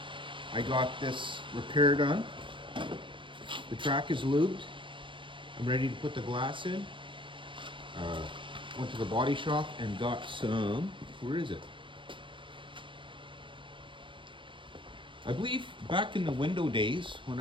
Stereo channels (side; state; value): left; late; 0.24 ms